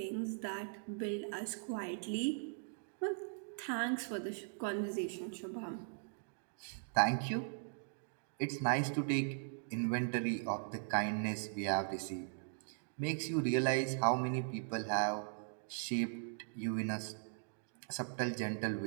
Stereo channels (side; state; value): left; silent; digital silence